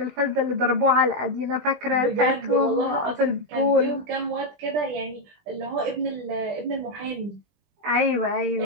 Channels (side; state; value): left; late; 20 ms